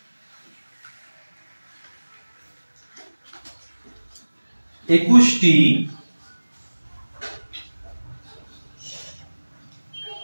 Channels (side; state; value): both; inverted; correlation -1.00